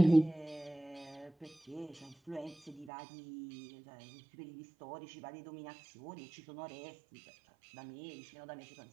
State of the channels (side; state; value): left; drops out; at 2.9 s